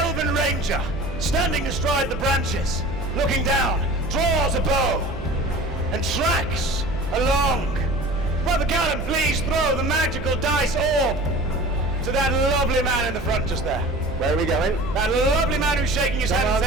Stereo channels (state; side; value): noise; right; hum, 12 dB below the sound